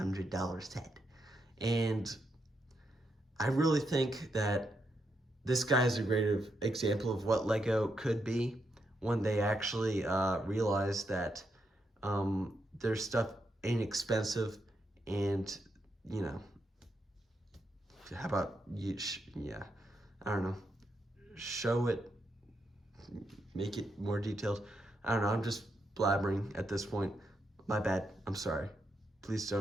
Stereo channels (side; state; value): both; normal; correlation 0.81